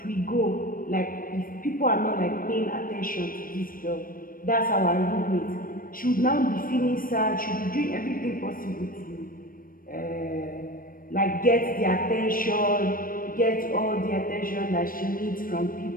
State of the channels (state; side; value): late; right; 0.41 ms